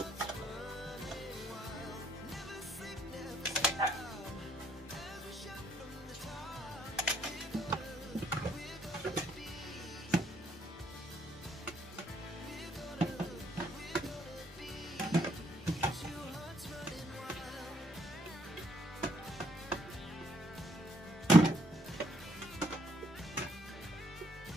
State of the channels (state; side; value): normal; both; correlation 0.69